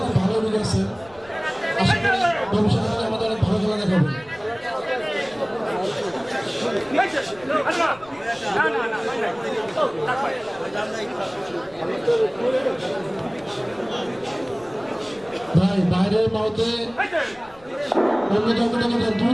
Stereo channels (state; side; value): noise; left; rumble, 25 dB below the sound